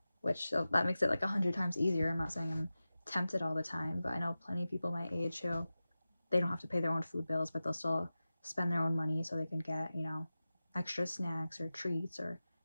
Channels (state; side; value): inverted; both; correlation -0.95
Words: which that makes it like 100 times easier. I'm not saying I'm tempted all the time, but I know plenty of people my age who they don't have to pay their own food bills, but they'll still spend their own money so they can get, extra snacks or treats or